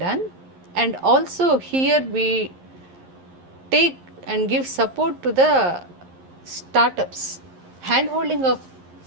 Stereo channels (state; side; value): late; left; 11 ms